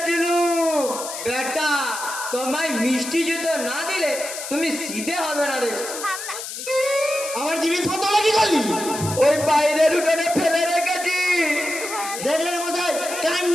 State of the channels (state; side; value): noise; left; hiss, 8 dB below the sound